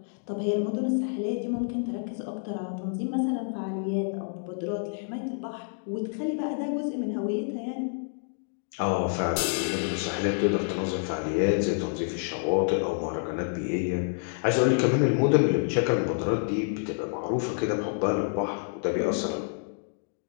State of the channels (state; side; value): silent; right; digital silence